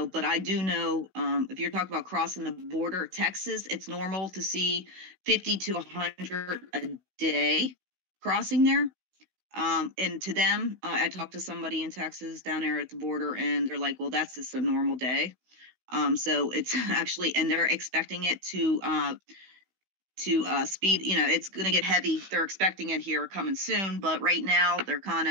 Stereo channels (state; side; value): late; left; 16 ms